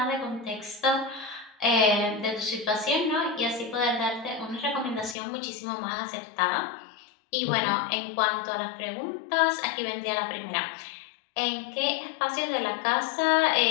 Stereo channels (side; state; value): right; drops out; at 5.2 s